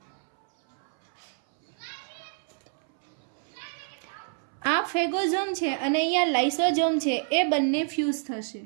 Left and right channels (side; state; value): left; silent; 59 dB below the other